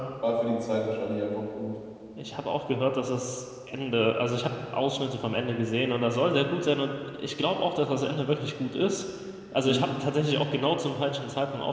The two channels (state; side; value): identical; both; correlation 1.00